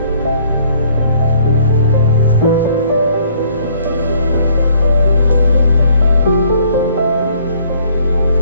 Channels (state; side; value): inverted; both; correlation -0.62